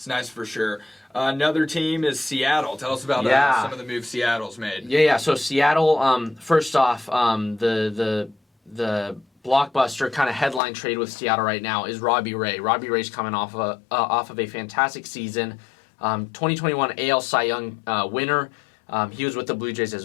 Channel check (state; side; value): drops out; right; at 10.6 s